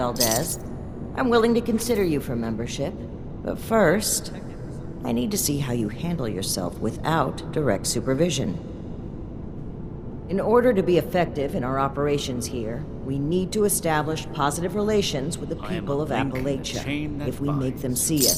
I'm willing to consider you for membership. But first, I need to see how you handle yourself without direct supervision. In order to be effective in our operations here, we need to establish positive relations with the I am people a of link in the Appalachia. chain that If we make them binds. see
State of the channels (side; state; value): both; identical; correlation 1.00